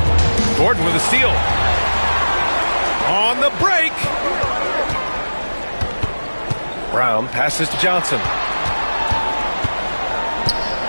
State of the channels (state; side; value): inverted; both; correlation -1.00